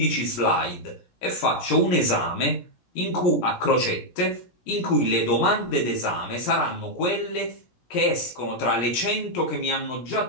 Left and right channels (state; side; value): late; right; 17 ms